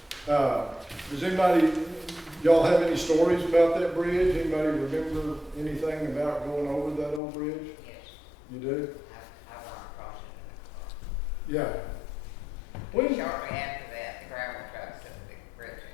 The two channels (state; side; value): drops out; right; at 7.2 s